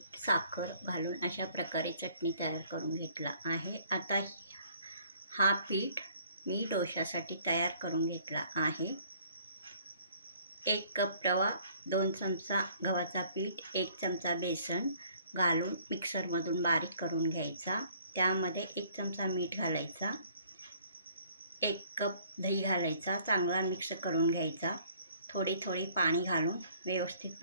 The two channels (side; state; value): both; inverted; correlation -0.58